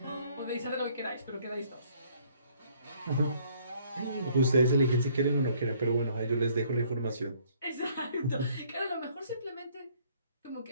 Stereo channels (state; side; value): inverted; both; correlation -0.62